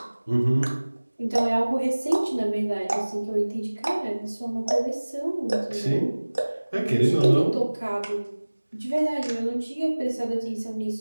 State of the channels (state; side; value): inverted; both; correlation -1.00